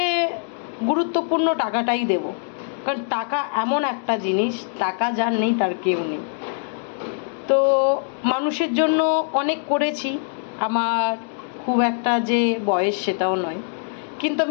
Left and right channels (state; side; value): silent; right; digital silence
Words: গুরুত্বপূর্ণ টাকাটাই দেব। কারণ টাকা এমন একটা জিনিস, টাকা যার নেই তার কেউ নেই। তো মানুষের জন্য অনেক করেছি, আমার খুব একটা যে বয়স সেটাও নয়, কিন্তু